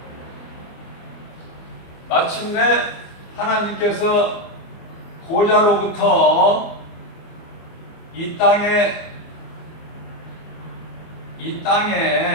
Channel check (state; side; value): late; right; 25 ms